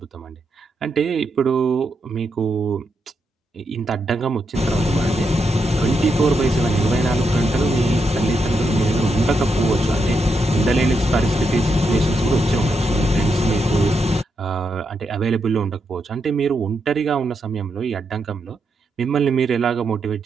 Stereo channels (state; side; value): normal; both; correlation 0.83